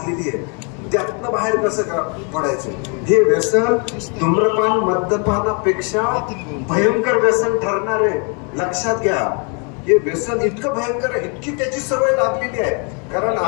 आहे. त्यातनं बाहेर कसं पडायचं? हे व्यसन धूम्रपान, मद्यपानापेक्षा भयंकर व्यसन ठरणार आहे. लक्षात घ्या. हे व्यसन इतकं भयंकर आहे, इतकी त्याची सवय लागलेली आहे. कारण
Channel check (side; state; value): right; quieter; 36.2 dB